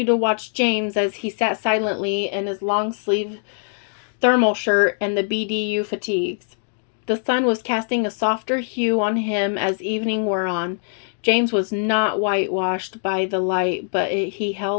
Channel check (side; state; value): right; silent; digital silence